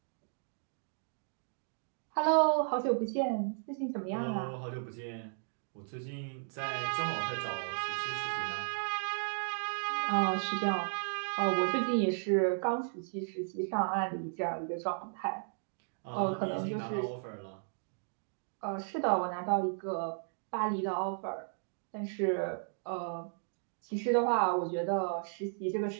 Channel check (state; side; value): silent; left; digital silence